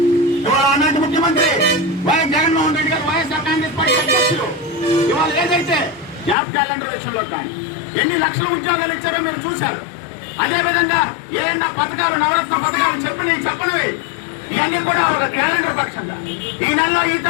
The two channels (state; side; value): drops out; right; at 6.4 s